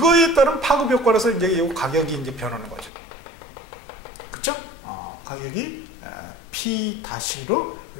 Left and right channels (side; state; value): right; drops out; at 2.9 s